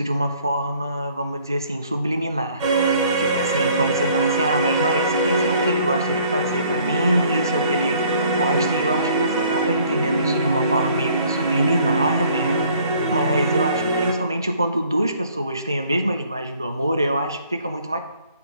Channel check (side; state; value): both; inverted; correlation -0.59